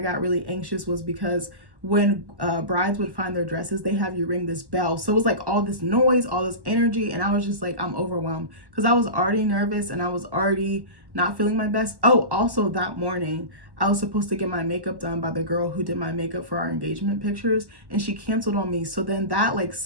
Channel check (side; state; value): left; late; 1.1 ms